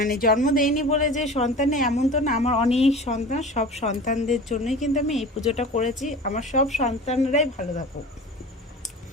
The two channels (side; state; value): both; normal; correlation 0.36